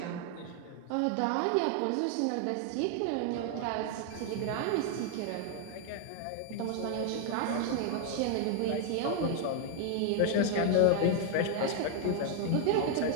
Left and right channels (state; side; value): different; both; correlation 0.00